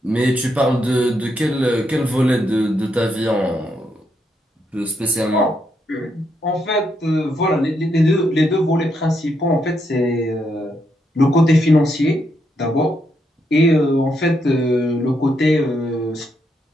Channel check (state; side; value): normal; both; correlation 0.78